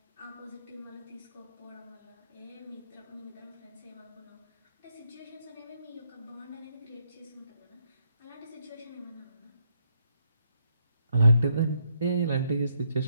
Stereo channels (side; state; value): both; inverted; correlation -0.75